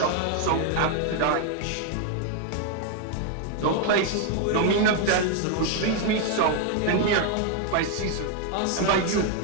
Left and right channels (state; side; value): different; both; correlation 0.01